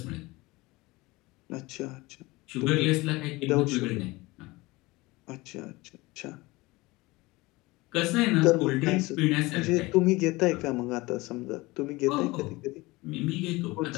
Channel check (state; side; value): quieter; right; 21.8 dB